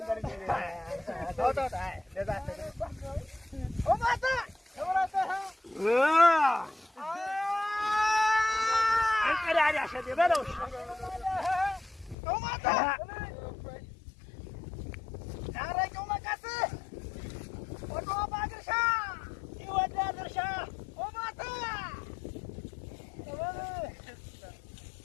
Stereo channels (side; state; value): right; drops out; at 12.2 s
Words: በርጂ ታውታው አይ ለዛት ኦማታ ተወራታ አንቀዳሪ አሸደ በለው ኦማታ ታረቀው መቀስ ወዶ ባግርሻ ይወዳ ድርሻ ኦማታ